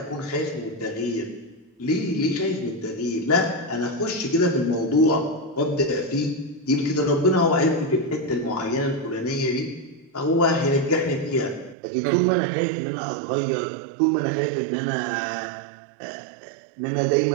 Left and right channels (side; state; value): left; drops out; at 11.8 s